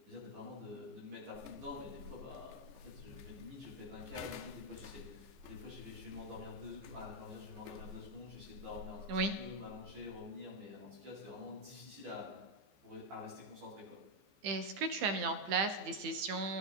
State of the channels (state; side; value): late; left; 15 ms